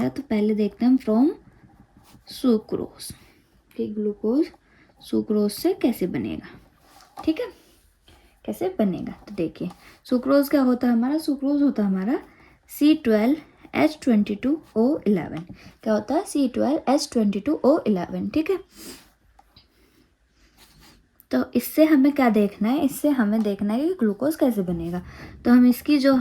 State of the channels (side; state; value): both; identical; correlation 1.00